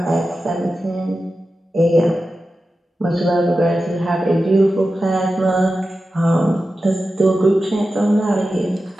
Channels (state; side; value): normal; both; correlation 0.92